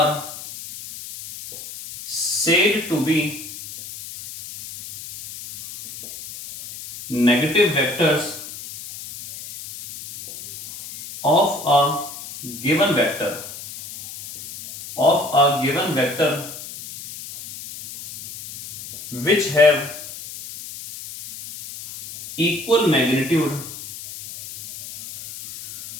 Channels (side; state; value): left; noise; hiss, 13 dB below the sound